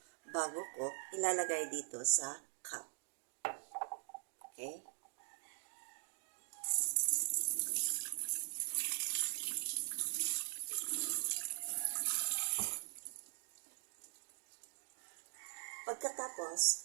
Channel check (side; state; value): left; silent; digital silence